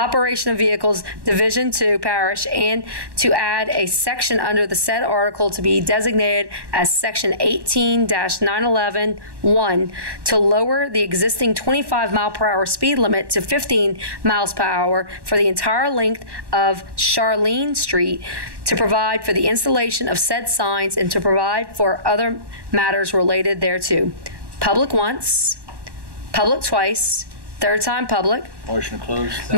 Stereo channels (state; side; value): late; left; 1.1 ms